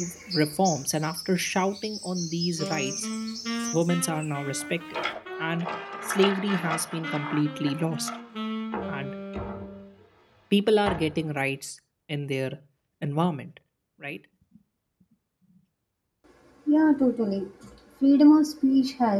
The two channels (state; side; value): identical; both; correlation 1.00